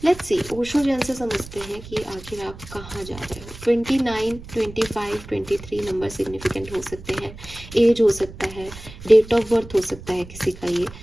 लेट्स सी, ओशो जैन से समझते हैं कि आखिर आप कहाँ जा रहे हो। 29, 25, 23 नंबर सिग्निफिकेंट हो सकते हैं, एज हो सकता है, डेट ऑफ बर्थ हो सकता है किसी का ये,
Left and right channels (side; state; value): right; noise; rumble, 15 dB below the sound